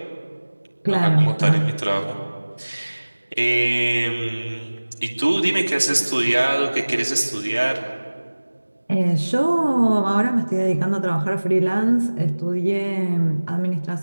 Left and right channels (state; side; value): inverted; both; correlation -1.00